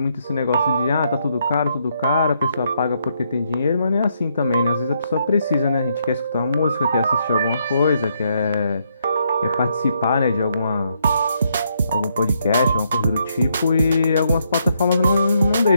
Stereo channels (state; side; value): inverted; both; correlation -0.75